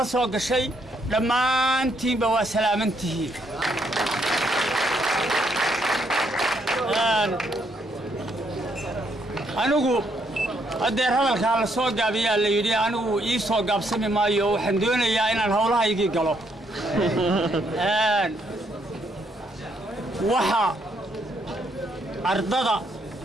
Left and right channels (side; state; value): both; normal; correlation 0.73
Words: la soo gashay dhammaantiinba waa salaamantihiin anigu adeer hadalkaa la soo gaabiyaa la yidhi anigu ii soo gaabsami maayo waxaan doonayaa inaan howlahaygii galo waxa ardada